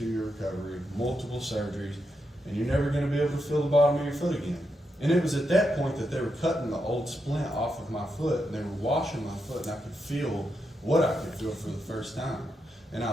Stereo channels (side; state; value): both; normal; correlation 0.84